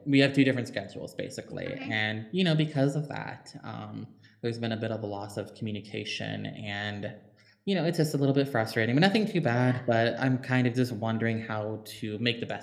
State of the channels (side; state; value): both; identical; correlation 1.00